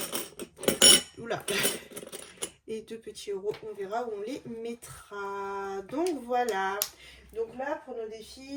Oula. Et 2 petits euros, on verra où on les mettra. Donc voilà. Donc là, pour nos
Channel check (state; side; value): identical; both; correlation 1.00